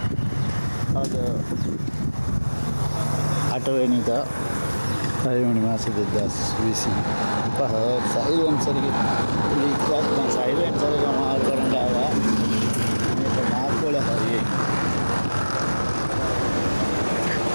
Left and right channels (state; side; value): inverted; both; correlation -1.00